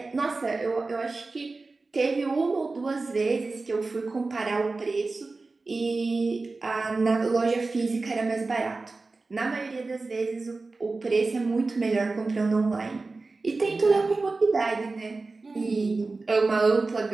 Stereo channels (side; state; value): left; quieter; 3.7 dB